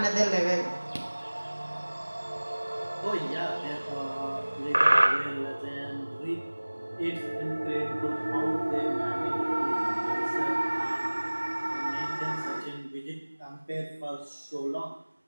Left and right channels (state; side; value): inverted; both; correlation -1.00